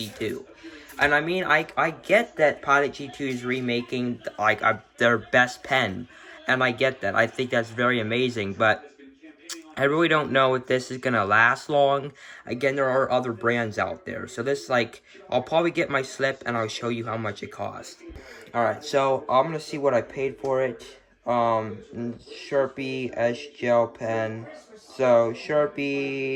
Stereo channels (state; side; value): identical; both; correlation 1.00